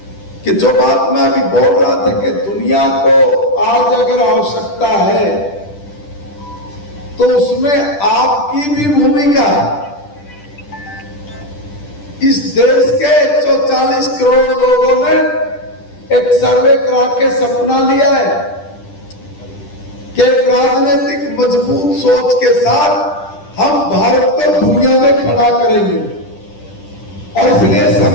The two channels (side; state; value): right; late; 10 ms